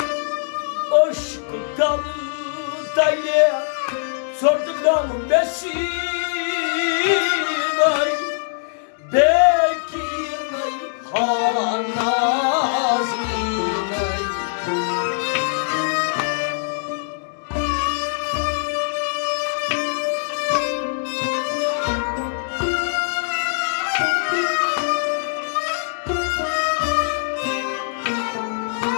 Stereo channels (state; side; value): silent; right; digital silence